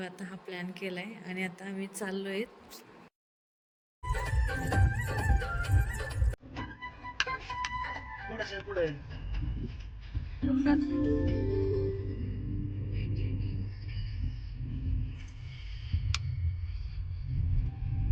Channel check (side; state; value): both; identical; correlation 1.00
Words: आता हा प्लॅन केला आहे आणि आता आम्ही चाललो आहे. पुढे